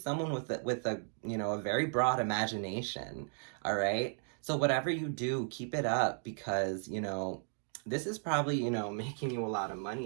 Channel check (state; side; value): silent; left; 54 dB below the other